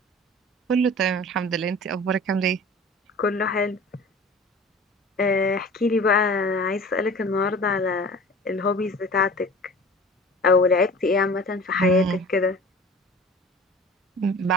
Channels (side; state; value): both; normal; correlation 0.41